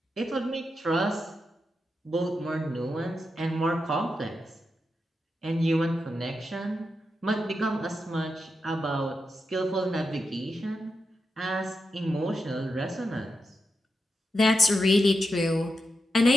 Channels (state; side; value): normal; both; correlation 0.87